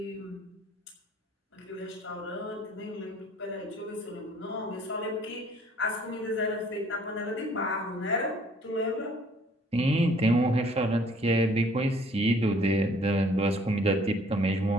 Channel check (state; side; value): normal; both; correlation 0.58